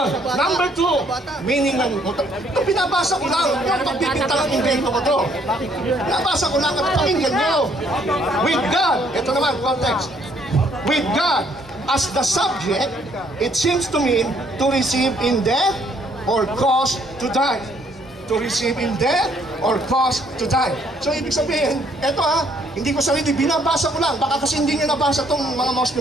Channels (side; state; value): both; normal; correlation 0.66